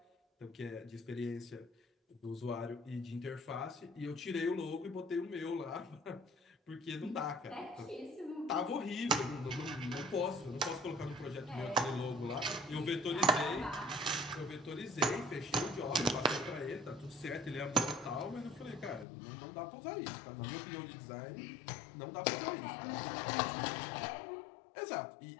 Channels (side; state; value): right; drops out; at 19.1 s